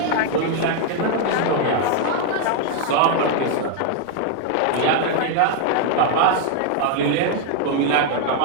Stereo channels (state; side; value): different; both; correlation 0.00